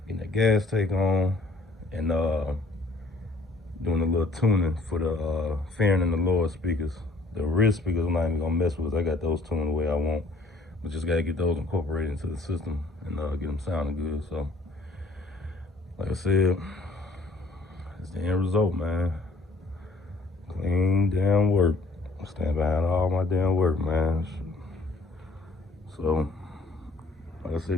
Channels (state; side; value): quieter; right; 3.1 dB